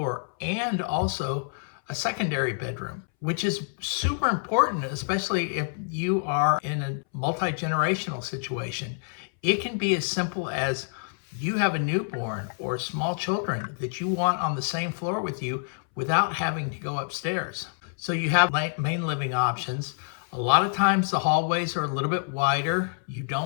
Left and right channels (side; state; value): right; silent; 60 dB below the other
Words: and also a secondary bedroom, which is super important, especially if you are in a multi-generational situation. It can be as simple as you have a newborn or small children that you want on the same floor with you without having to go upstairs. So you have main living options. A lot of times the hallways are a little bit wider. You